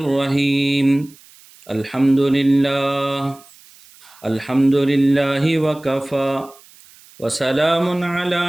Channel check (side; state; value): right; noise; hiss, 25 dB below the sound